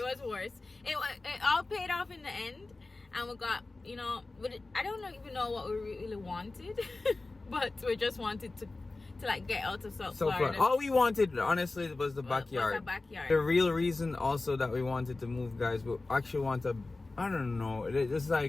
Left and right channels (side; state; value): right; quieter; 3.3 dB